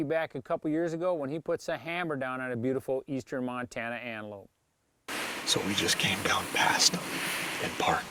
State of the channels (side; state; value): both; identical; correlation 1.00